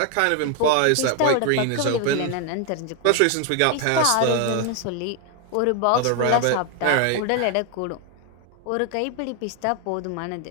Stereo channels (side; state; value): both; different; correlation 0.01